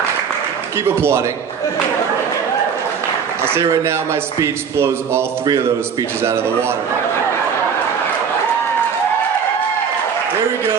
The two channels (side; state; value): left; quieter; 6.7 dB